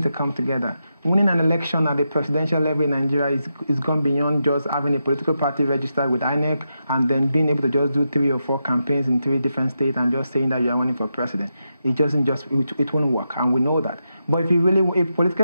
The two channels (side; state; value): both; inverted; correlation -0.86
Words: to come together. Winning an election at the presidential level in Nigeria is gone beyond just having a political party registered with INEC and then being able to just do 3 or 4 campaigns in 3 different states and just saying that you are running for president. It won't work, and we know that. But if